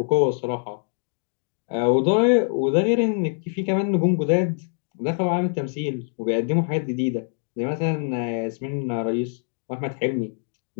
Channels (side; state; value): right; silent; 62 dB below the other